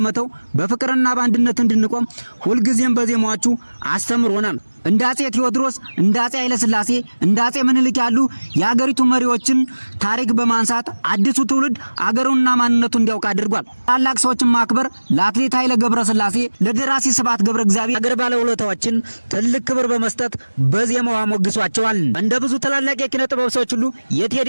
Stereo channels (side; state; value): both; inverted; correlation -1.00